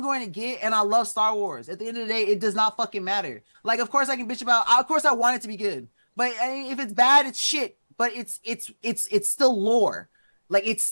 going to get, and I love Star Wars. At the end of the day, it does not fucking matter. Like of course I can bitch about. Of course I want it to be good. But I mean, if it's bad, it's shit. But it's still lore. Like it's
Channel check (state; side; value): inverted; both; correlation -1.00